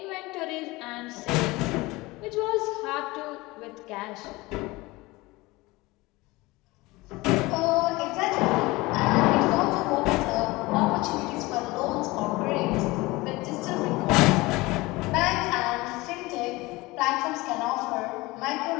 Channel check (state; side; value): quieter; right; 21.6 dB